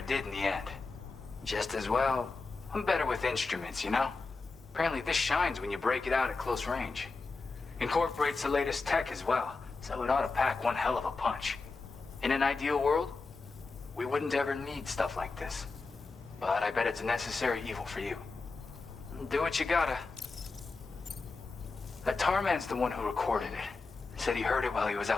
did in the end. Just as well, I'm better with instruments, you know? Apparently this shines when you break it out at close range. Incorporates the latest tech as well, so it ought to pack one hell of a punch. In an ideal world, we wouldn't ever need stuff like this. But I bet it's a necessary evil for you. Do what you gotta. That tar man's the one who recorded it. Said he heard it while he was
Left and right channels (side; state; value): right; quieter; 4.0 dB